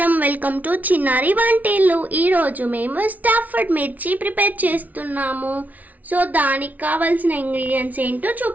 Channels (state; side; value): late; left; 0.074 ms